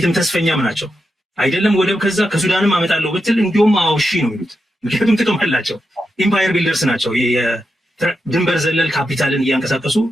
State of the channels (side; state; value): both; normal; correlation 0.87